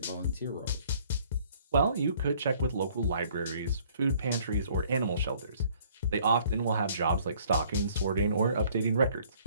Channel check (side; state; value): both; inverted; correlation -0.58